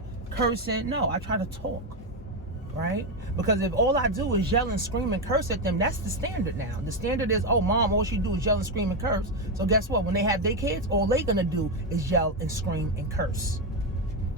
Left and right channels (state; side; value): normal; both; correlation 0.08